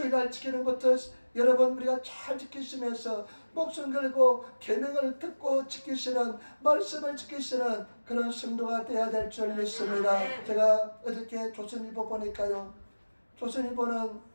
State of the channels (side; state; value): both; inverted; correlation -1.00